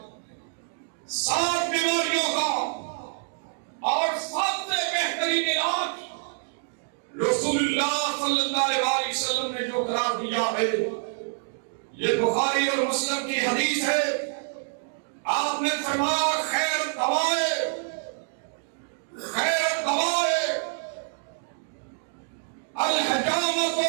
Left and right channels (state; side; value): silent; left; digital silence